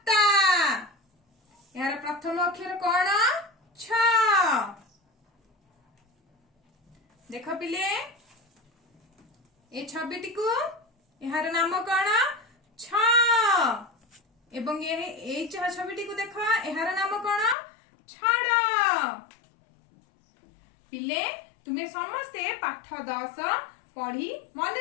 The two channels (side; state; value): right; drops out; at 17.6 s